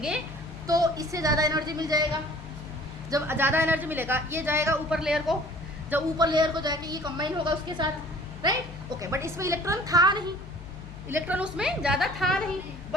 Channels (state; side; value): noise; left; hum, 15 dB below the sound